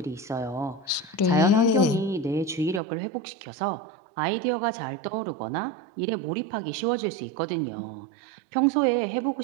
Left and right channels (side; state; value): left; drops out; at 2.8 s